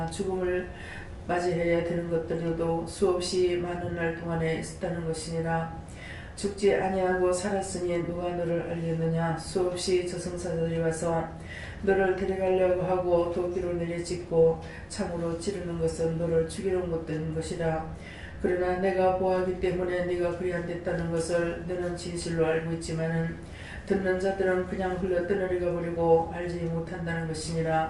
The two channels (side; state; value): both; identical; correlation 1.00